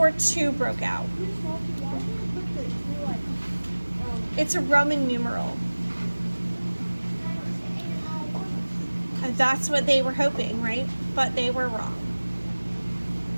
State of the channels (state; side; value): inverted; both; correlation -1.00